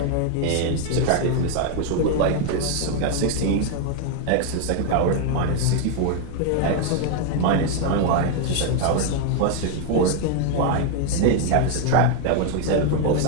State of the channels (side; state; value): both; different; correlation 0.00